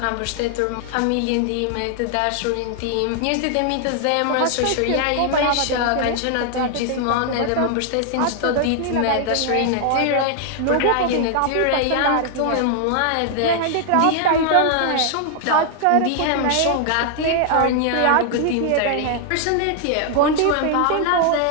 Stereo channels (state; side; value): different; both; correlation 0.00